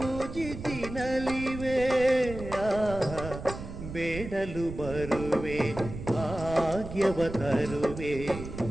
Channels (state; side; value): noise; right; rumble, 10 dB below the sound